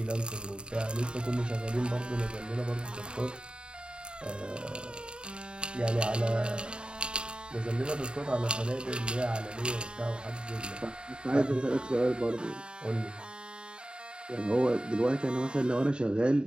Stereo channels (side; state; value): left; late; 0.051 ms